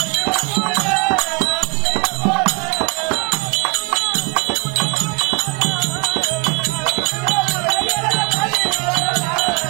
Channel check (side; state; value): left; quieter; 31.0 dB